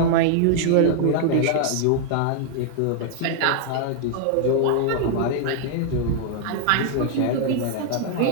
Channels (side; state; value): both; different; correlation 0.00